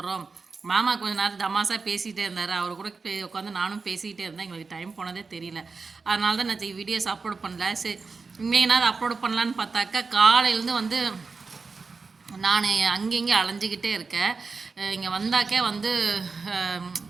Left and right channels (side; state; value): left; quieter; 4.5 dB